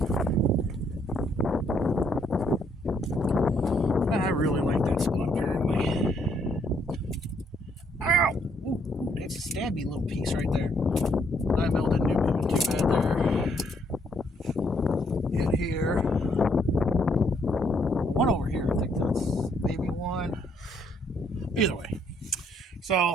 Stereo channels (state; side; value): normal; both; correlation 0.70